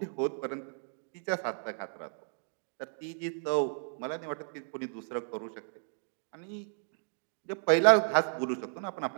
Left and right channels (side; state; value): left; silent; digital silence